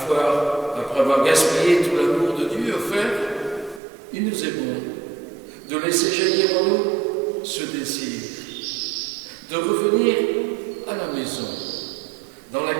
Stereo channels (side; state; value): left; drops out; at 3.8 s